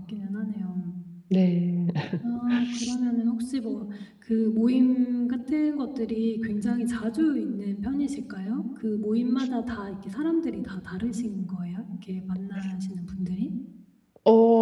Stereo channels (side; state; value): both; identical; correlation 1.00